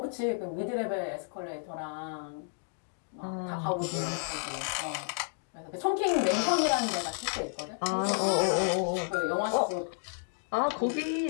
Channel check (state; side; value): silent; right; digital silence